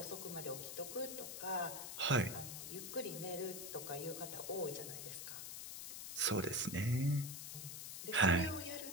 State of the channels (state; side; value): noise; left; hiss, 7 dB below the sound